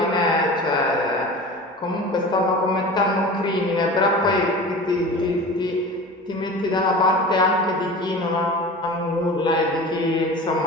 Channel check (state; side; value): normal; both; correlation 0.35